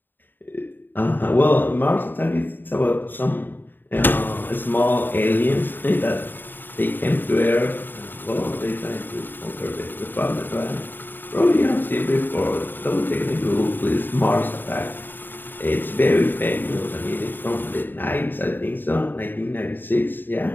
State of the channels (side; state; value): right; late; 0.093 ms